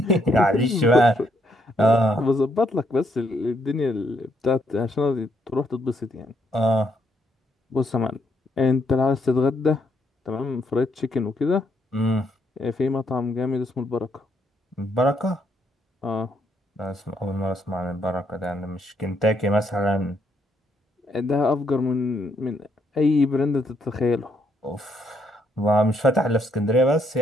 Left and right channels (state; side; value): normal; both; correlation 0.73